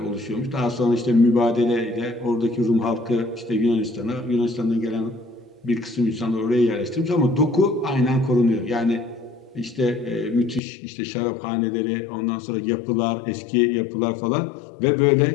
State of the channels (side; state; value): right; drops out; at 10.6 s